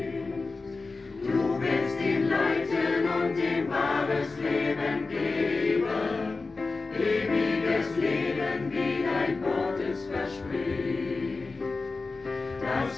Du willst ihn leiten und ihm wahres Leben geben, ewiges Leben, wie dein Wort es verspricht. Das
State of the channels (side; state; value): right; quieter; 3.9 dB